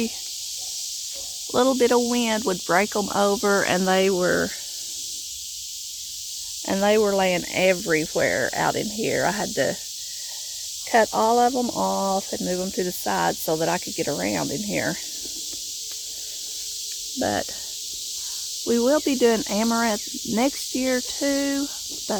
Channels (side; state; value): both; identical; correlation 1.00